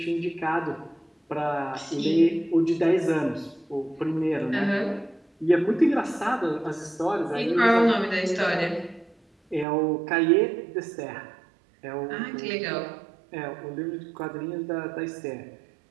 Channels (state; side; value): drops out; left; at 9.7 s